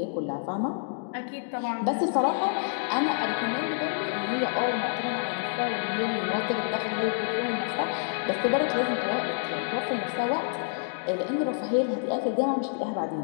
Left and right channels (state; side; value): silent; right; digital silence